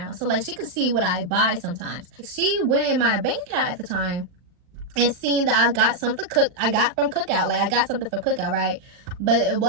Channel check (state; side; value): late; left; 39 ms